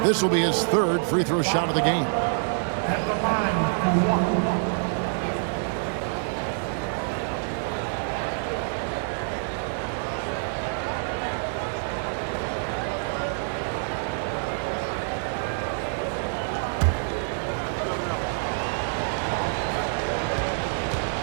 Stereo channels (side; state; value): left; silent; digital silence